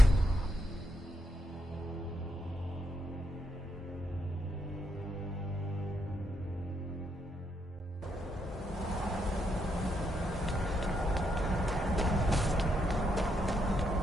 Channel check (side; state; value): both; normal; correlation 0.79